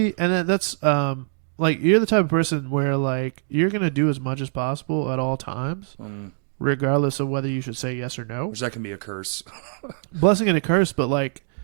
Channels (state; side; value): silent; left; digital silence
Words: and that's like you're the type of person where like you're gonna do as much as possible at all times, regardless of whether you should say yes or no. Which that can be a curse. Blessing and a curse, but like